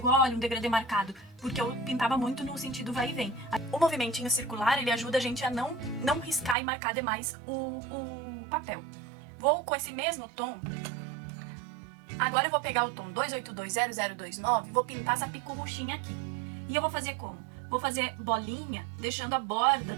olha, um degradê marcado, porque eu pintava muito no sentido vai e vem. O movimentinho circular, ele ajuda a gente a não riscar e marcar demais o papel. Vou com esse mesmo tom. Agora eu vou pegar o tom 2820029 e vou pintar essa picorruchinha aqui. E eu vou fazer como? Vou fazer bolinha, deixando a borda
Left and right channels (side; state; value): left; drops out; at 6.6 s